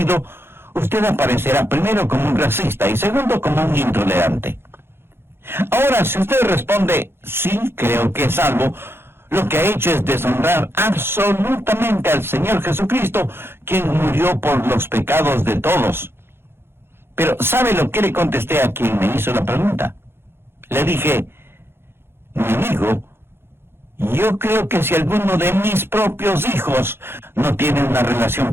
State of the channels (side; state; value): left; late; 0.11 ms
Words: usted aparecerá primero como un racista y segundo como un intolerante. Ahora, si usted responde: sí, creo que es salvo, lo que ha hecho es deshonrar absolutamente al Señor Jesucristo, quien murió por los pecados de todos. Pero ¿sabe lo que le contesté a quien me hizo la pregunta? Le dije: mi amigo, yo creo que si alguno de mis propios hijos no tiene una relación